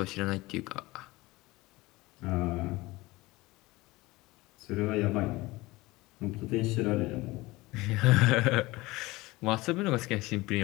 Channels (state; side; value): quieter; right; 20.8 dB